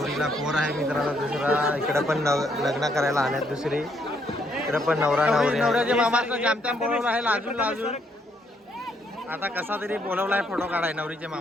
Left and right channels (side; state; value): both; normal; correlation 0.72